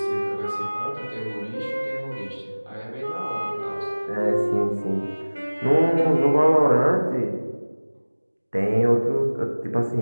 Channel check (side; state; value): both; inverted; correlation -1.00